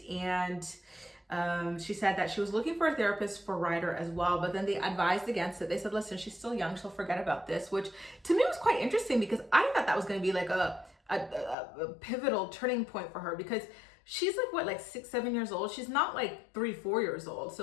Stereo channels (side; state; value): right; drops out; at 11.6 s